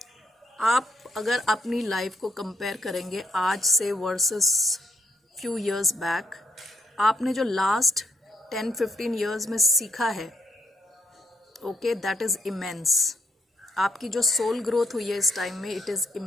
आप अगर अपनी लाइफ को कंपेयर करेंगे आज से वर्सेस फ्यू इयर्स बैक, आपने जो लास्ट 10-15 इयर्स में सीखा है, ओके, दैट इज़ इमेंस। आपकी जो सोल ग्रोथ हुई है इस टाइम में, it is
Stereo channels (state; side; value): normal; both; correlation 0.73